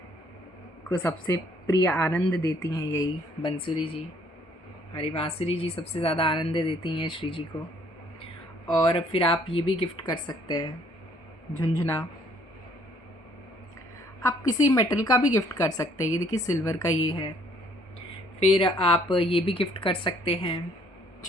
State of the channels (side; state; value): both; normal; correlation 0.63